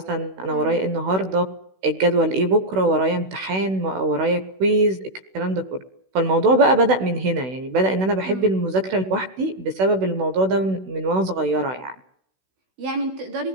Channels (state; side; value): late; left; 16 ms